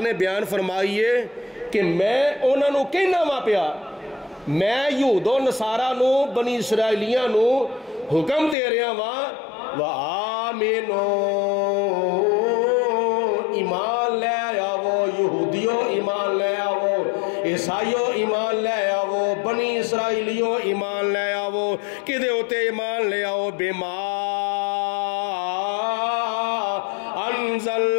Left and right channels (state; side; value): drops out; right; at 8.6 s